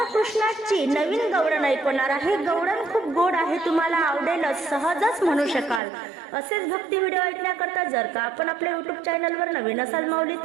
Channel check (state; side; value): drops out; left; at 5.8 s